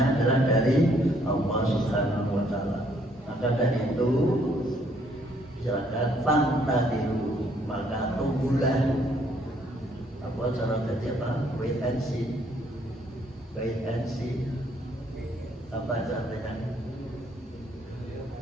adalah dari Allah Subhanahu wa Ta'ala. Maka dari itu silakan fantadiru, maka tunggulah. Apa cara jadi apa? Wait and see. Wait and see. Apa caranya?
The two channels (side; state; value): both; normal; correlation 0.67